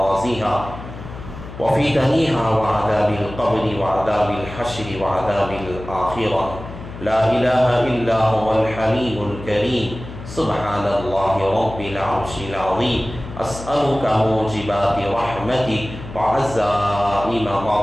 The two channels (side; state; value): left; noise; hum, 13 dB below the sound